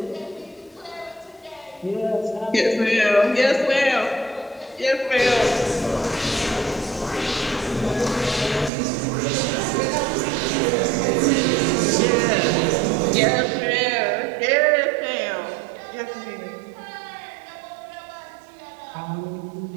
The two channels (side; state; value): left; drops out; at 8.7 s